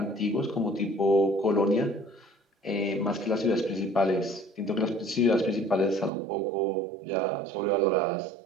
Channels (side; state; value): left; drops out; at 6.1 s